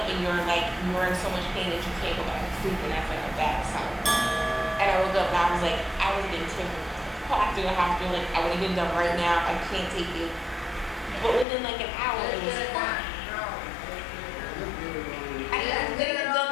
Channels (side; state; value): right; drops out; at 11.5 s